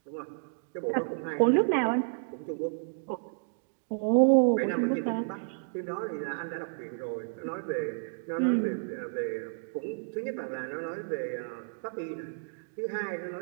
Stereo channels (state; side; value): silent; left; digital silence